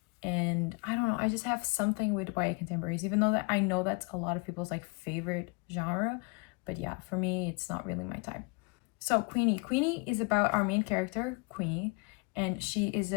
And I don't know, I just have something with YA contemporaries, even though that I know that's a lot of people's like favorite genre. But yeah, for me, it's not really my type. So Queenie. Queenie is about our main character, Queenie, and she is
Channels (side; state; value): right; quieter; 30.1 dB